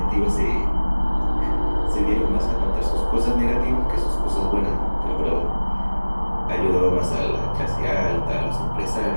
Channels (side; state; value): both; inverted; correlation -1.00